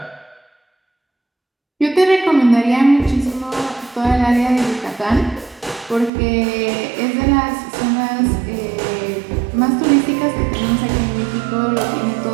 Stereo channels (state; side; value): drops out; left; at 6.1 s